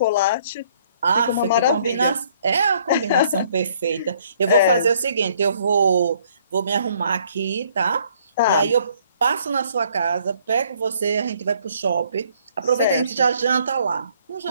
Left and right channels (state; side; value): inverted; both; correlation -0.63